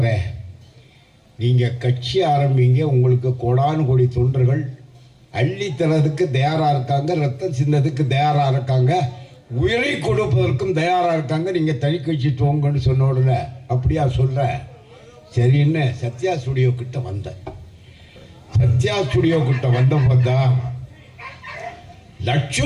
நீங்கள் கட்சி ஆரம்பிங்க, உங்களுக்கு கோடானு கோடி தொண்டர்கள் அள்ளி தரதுக்கு தயாராக இருக்காங்க, ரத்தம் சின்னதுக்கு தயாராக இருக்காங்க, உயிரை கொடுப்பதற்கும் தயாராக இருக்காங்க. நீங்கள் தனி கட்சி துவங்கன்னு சொன்ன உடனே அப்படியா சொல்ற சரின்னு சத்யா ஸ்டுடியோ கிட்ட வந்தேன். சத்யா ஸ்டுடியோ கிட்ட வந்த பார்த்தா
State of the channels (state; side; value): identical; both; correlation 1.00